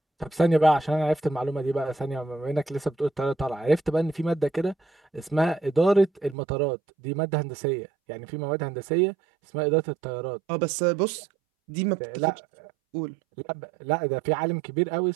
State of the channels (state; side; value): drops out; left; at 6.4 s